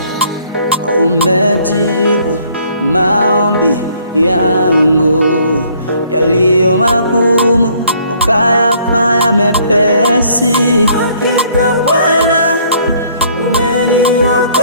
umejibu maombi yangu yaliyo magumu, ukayafanya mepesi. Hakika Bwana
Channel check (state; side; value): inverted; both; correlation -0.62